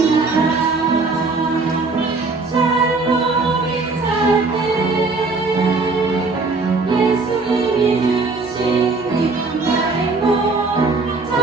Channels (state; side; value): quieter; left; 3.8 dB